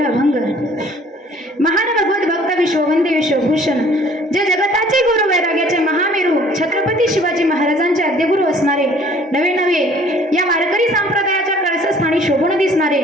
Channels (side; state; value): both; normal; correlation 0.55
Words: अभंग. महान भगवत भक्त विश्ववंदे विश्वभूषण जे जगताचे गुरु वैराग्याचे महामेरू छत्रपती शिवाजी महाराजांचे आद्यगुरु असणारे नवे नवे या वारकरी संप्रदायाच्या कळसस्थानी शोभून दिसणारे